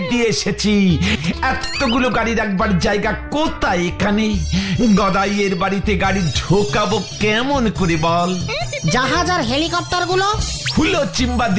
দিয়ে এসেছি। এতগুলো গাড়ি রাখবার জায়গা কোথায় এখানে? গদাইয়ের বাড়িতে গাড়ি ঢোকাবো কেমন করে বল? জাহাজ আর হেলিকপ্টার গুলো হুলো চিম্বা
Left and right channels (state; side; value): identical; both; correlation 1.00